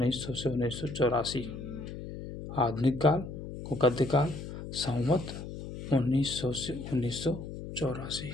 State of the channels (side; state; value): left; noise; hum, 9 dB below the sound